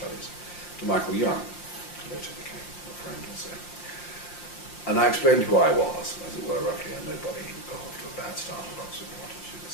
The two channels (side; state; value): right; late; 5.7 ms